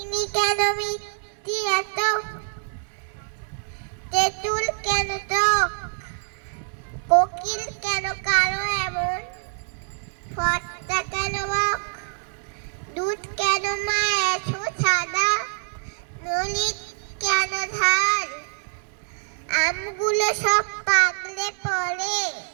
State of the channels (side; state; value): left; silent; 62 dB below the other